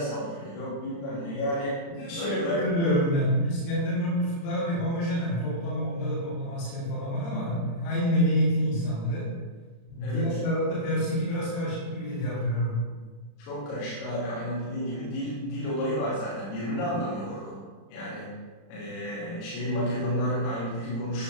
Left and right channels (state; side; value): late; right; 35 ms